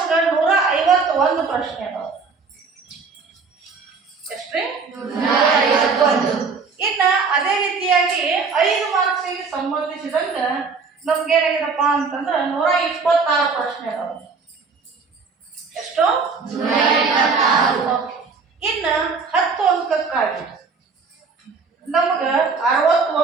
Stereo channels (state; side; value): quieter; left; 4.8 dB